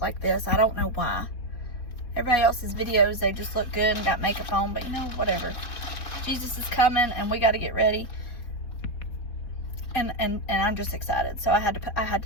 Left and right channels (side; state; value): right; late; 4.2 ms